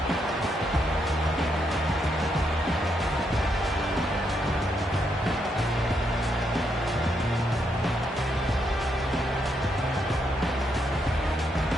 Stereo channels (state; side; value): normal; both; correlation 0.78